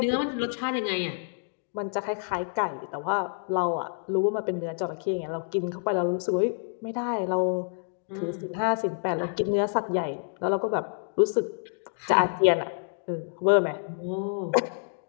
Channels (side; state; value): right; silent; digital silence